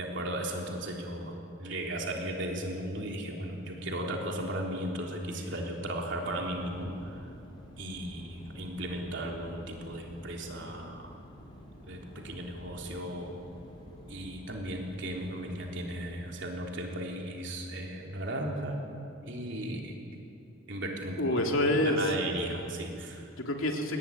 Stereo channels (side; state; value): both; normal; correlation 0.25